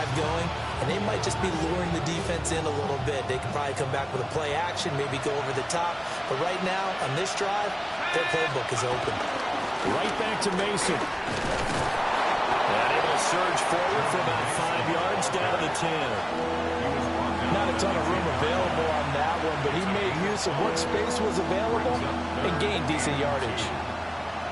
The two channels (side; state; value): both; identical; correlation 1.00